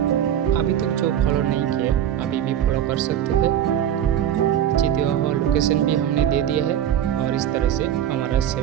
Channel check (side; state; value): left; quieter; 10.4 dB